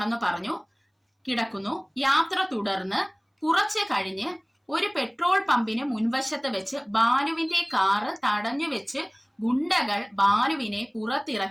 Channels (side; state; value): both; identical; correlation 1.00